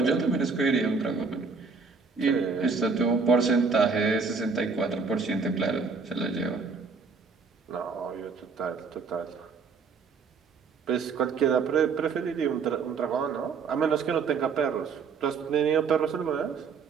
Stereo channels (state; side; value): quieter; left; 5.0 dB